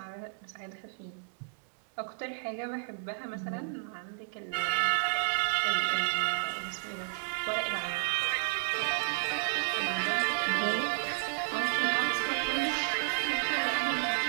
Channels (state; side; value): silent; left; digital silence